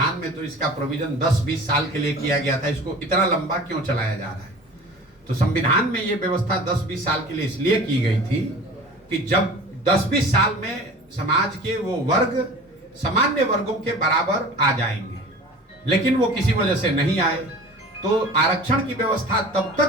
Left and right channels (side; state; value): both; normal; correlation 0.40